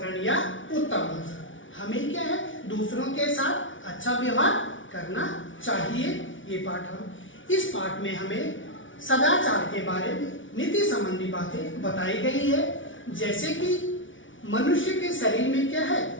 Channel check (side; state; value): right; late; 0.56 ms